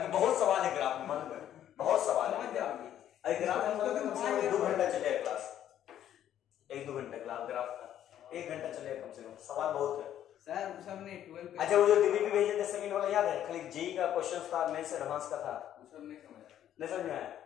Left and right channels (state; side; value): quieter; right; 11.0 dB